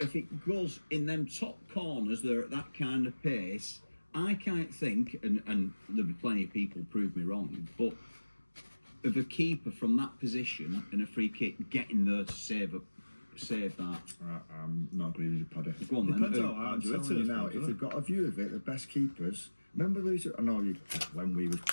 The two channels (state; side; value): inverted; both; correlation -1.00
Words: it goes in them top corners, they're at that kind of pace. I can't think, and there'll be plenty of people prove me wrong, but of a keeper from that position and a free kick getting there to save that. I'm not agreeing with you, Paddy. Go on then. Depends how I'm hard you hit telling you it. now, if they've got a view of it, the best keepers. Remember, I know you when we was